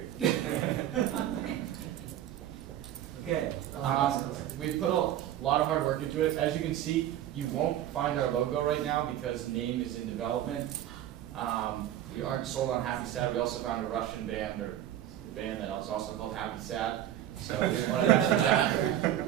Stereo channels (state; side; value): quieter; left; 11.9 dB